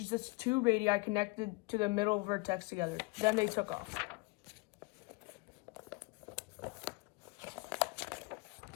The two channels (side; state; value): right; quieter; 26.9 dB